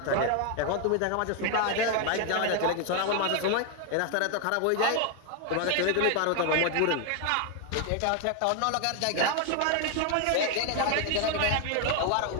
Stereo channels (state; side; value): different; both; correlation 0.01